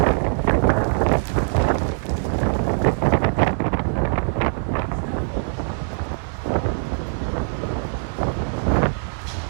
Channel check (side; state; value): left; silent; 64 dB below the other